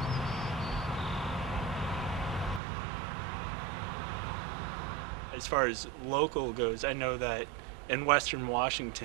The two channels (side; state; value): left; drops out; at 2.6 s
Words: As far as local goes, I know that in Western